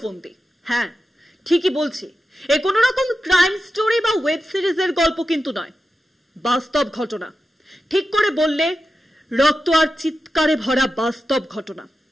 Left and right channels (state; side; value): normal; both; correlation 0.91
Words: ফন্দি। হ্যাঁ, ঠিকই বলছি, এ কোনো রকম ক্রাইম স্টোরি বা ওয়েব সিরিজের গল্প কিন্তু নয়, বাস্তব ঘটনা। ঠিক করে বললে রক্ত আর চিৎকারে ভরা বাস্তব ঘটনা।